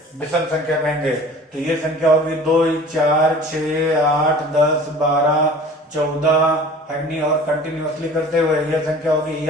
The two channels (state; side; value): normal; both; correlation 0.44